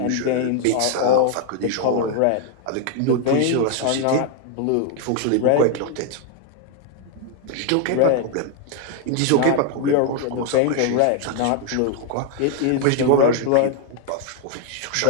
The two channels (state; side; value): different; both; correlation 0.00